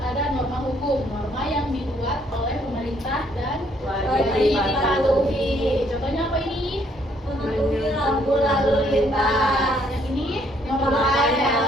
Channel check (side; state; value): both; normal; correlation 0.66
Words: ada norma hukum, norma yang dibuat oleh pemerintah dan Wajib dipatuhi. Contohnya apa ini? Mematuhi lampu lalu lintas. Yang ini Memakai